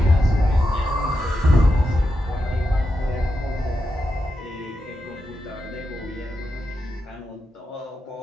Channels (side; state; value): both; normal; correlation 0.86